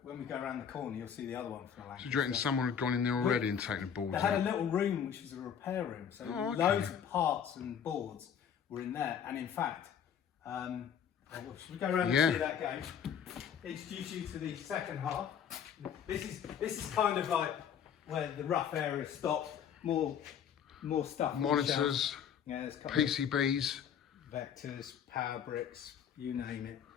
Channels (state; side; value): quieter; right; 8.2 dB